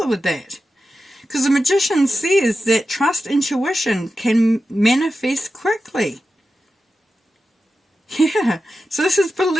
with that? Because the Magician says that trust intuition can manifest quickly. Yeah, so this is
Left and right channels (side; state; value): both; normal; correlation 0.92